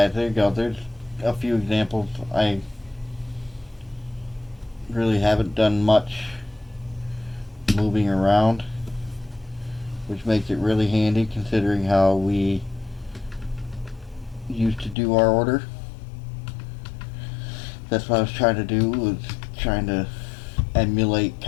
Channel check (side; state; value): right; drops out; at 15.0 s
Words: there you go. There's a few examples. I really haven't done much moving around, which makes it really handy considering how we used to do our order. That's what I was trying to do, was trying to emulate